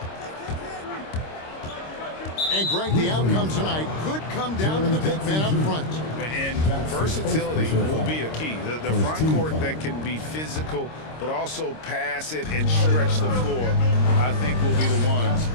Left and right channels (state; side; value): late; right; 26 ms